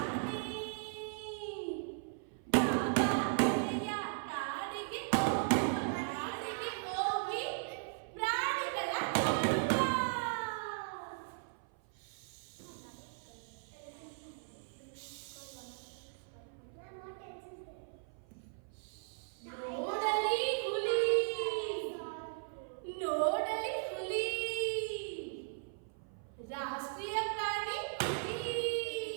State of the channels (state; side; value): silent; left; 53 dB below the other